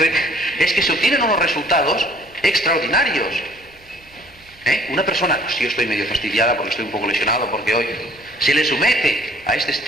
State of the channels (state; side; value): normal; both; correlation 0.56